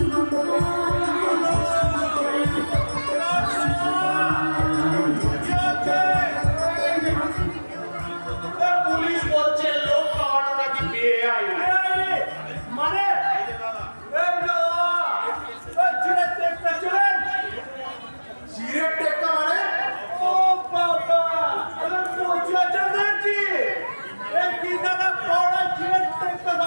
পুলিশ বলছে লোক খাওয়ানো নাকি বেআইন। মানে সিগারেট টেক্কা মানে? ও বাবা, আমি তো চাচা দেখছি। এই কি দাদা পড়া চিড়ে দেখতে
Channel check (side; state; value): both; inverted; correlation -1.00